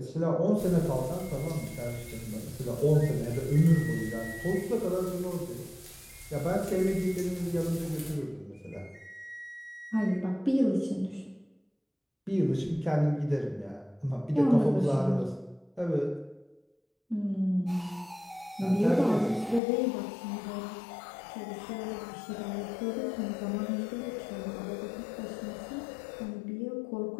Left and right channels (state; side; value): drops out; right; at 19.6 s